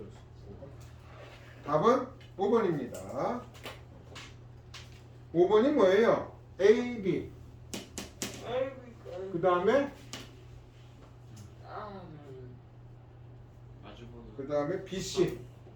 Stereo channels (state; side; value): identical; both; correlation 1.00